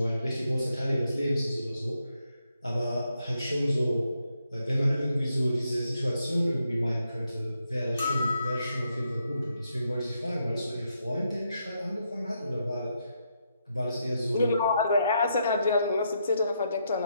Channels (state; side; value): inverted; both; correlation -0.80